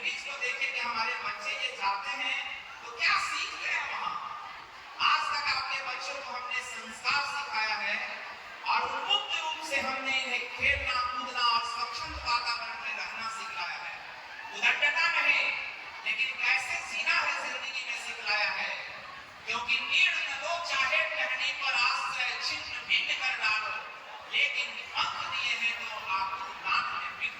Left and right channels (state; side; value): identical; both; correlation 1.00